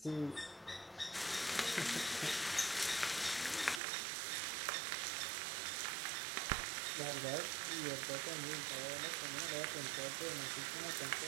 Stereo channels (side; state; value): left; drops out; at 3.8 s